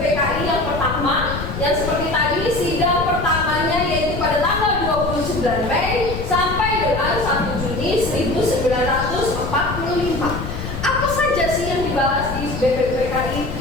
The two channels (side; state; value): left; noise; rumble, 7 dB below the sound